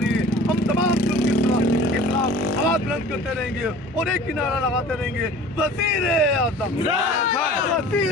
है। हम तमाम जुल्म के खिलाफ आवाज बुलंद करते रहेंगे और एक ही नारा लगाते रहेंगे, वज़ीर आज़म,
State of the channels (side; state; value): both; normal; correlation 0.43